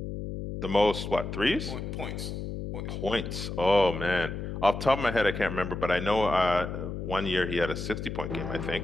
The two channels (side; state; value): left; noise; hum, 6 dB below the sound